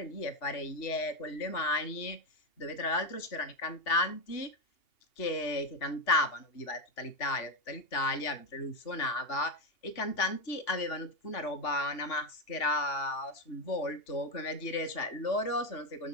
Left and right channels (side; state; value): right; late; 2.8 ms